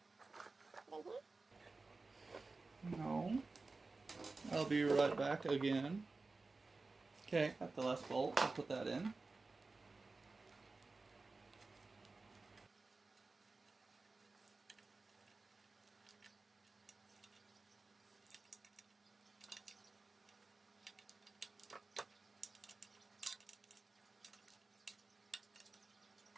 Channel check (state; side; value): quieter; left; 3.7 dB